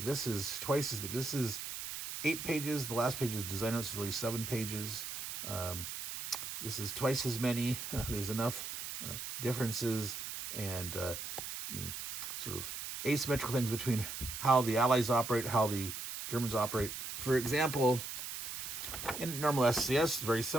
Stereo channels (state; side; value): noise; right; hiss, 7 dB below the sound